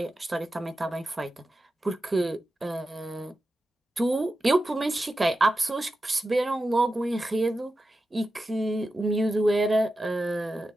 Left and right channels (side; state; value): both; normal; correlation 0.92